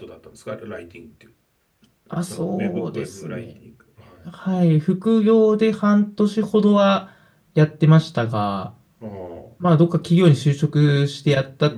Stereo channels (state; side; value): identical; both; correlation 1.00